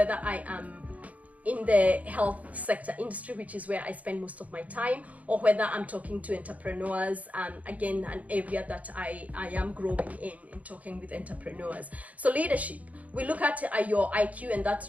I am in the health sector industry, which is where I spend most of my time, or whether I'm talking to entrepreneurs, again, an area that I am growing in talking with entrepreneurs. So leadership, we look at your IQ, and that's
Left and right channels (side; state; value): left; late; 0.071 ms